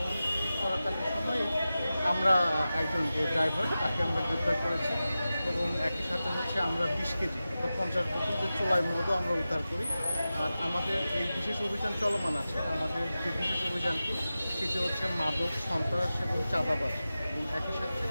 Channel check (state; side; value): inverted; both; correlation -0.94